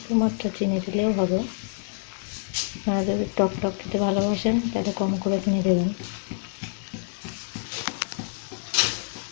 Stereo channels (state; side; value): silent; right; digital silence